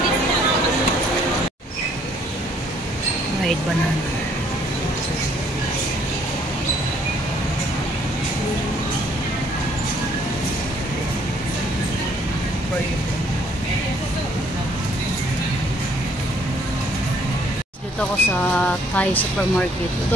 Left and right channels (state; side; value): normal; both; correlation 0.64